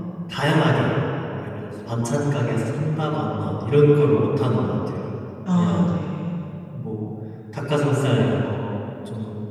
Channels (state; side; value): identical; both; correlation 1.00